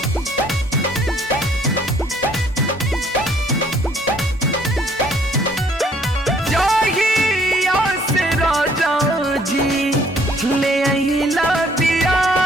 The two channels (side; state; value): both; normal; correlation 0.62